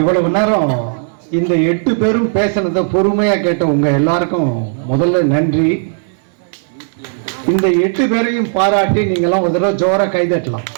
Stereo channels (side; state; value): left; silent; digital silence